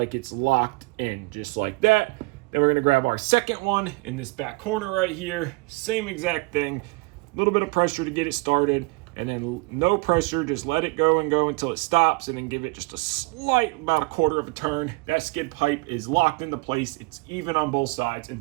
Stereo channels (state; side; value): quieter; left; 25.2 dB